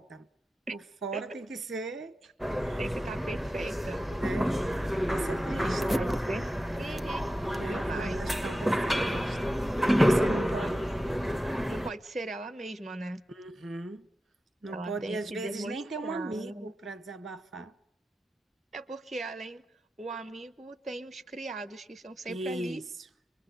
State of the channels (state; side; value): normal; both; correlation 0.92